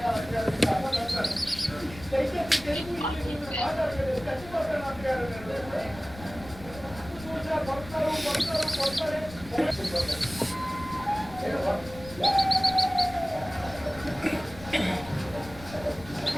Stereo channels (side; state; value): left; noise; rumble, 16 dB below the sound